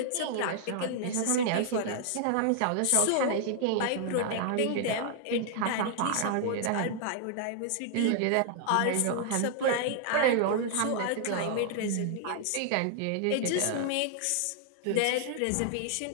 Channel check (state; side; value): different; both; correlation 0.00